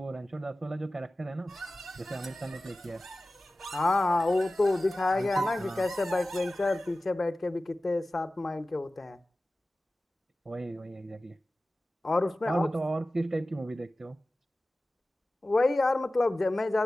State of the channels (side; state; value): both; normal; correlation 0.96